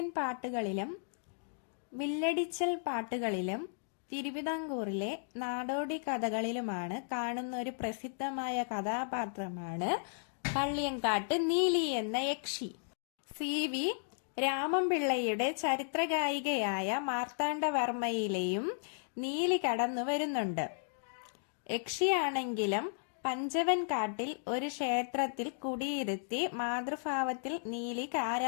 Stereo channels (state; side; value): silent; right; digital silence